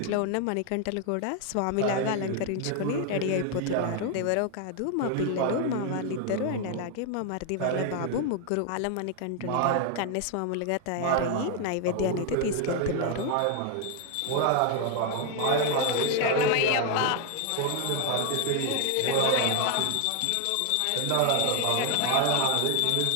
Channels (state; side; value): different; both; correlation 0.00